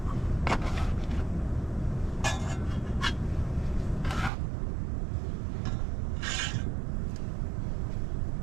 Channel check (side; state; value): left; drops out; at 4.3 s